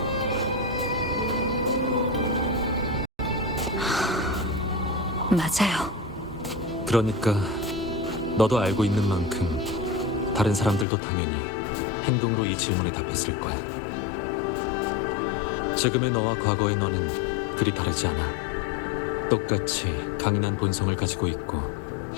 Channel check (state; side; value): drops out; right; at 10.9 s